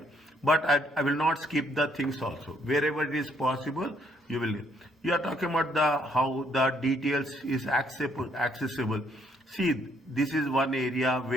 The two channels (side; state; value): both; normal; correlation 0.69